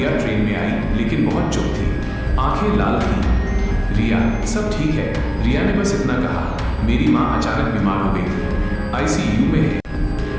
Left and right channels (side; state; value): both; identical; correlation 1.00